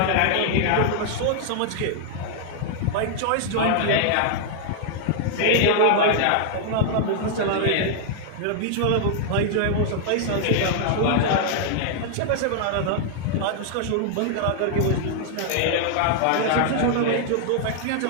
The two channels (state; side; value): different; both; correlation -0.01